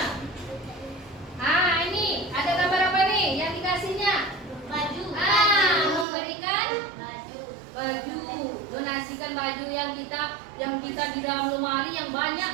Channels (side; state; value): left; drops out; at 6.1 s